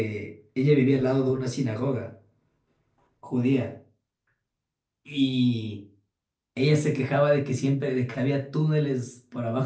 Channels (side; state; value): both; identical; correlation 1.00